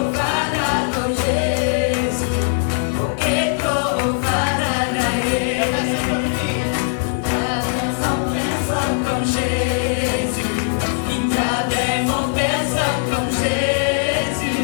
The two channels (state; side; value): silent; right; 66 dB below the other